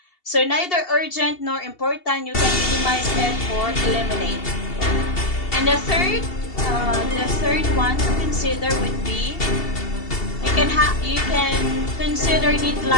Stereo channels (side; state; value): right; late; 2.7 ms